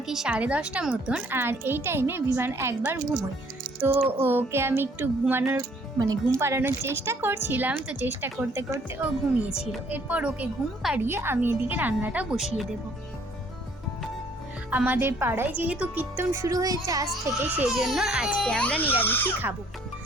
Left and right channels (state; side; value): normal; both; correlation 0.61